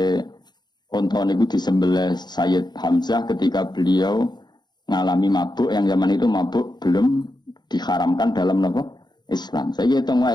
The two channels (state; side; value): late; right; 0.21 ms